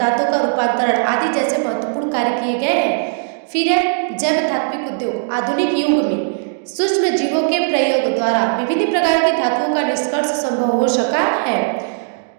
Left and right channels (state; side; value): silent; left; digital silence